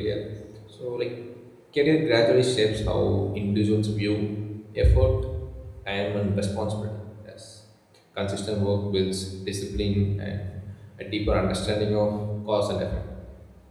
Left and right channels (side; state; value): both; identical; correlation 1.00